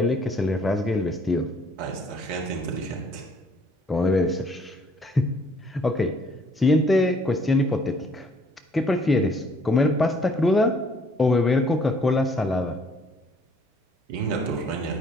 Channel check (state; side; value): normal; both; correlation 0.62